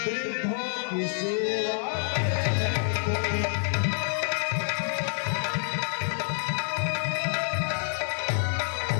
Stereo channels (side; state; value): right; silent; digital silence